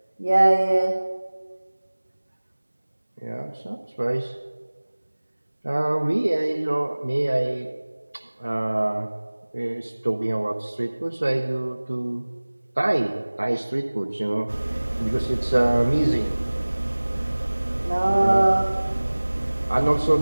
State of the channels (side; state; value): both; inverted; correlation -1.00